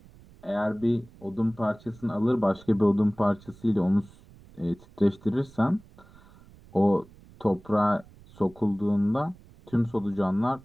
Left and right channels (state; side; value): noise; right; rumble, 24 dB below the sound